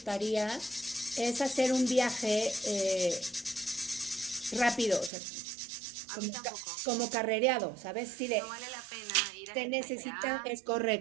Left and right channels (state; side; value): drops out; left; at 5.1 s